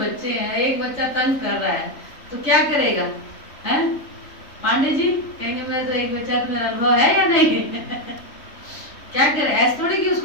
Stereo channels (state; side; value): late; right; 3.4 ms